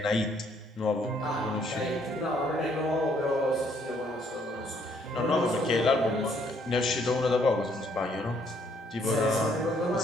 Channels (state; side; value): normal; both; correlation 0.67